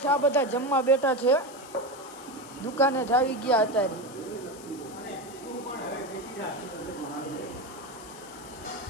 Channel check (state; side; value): noise; left; hiss, 18 dB below the sound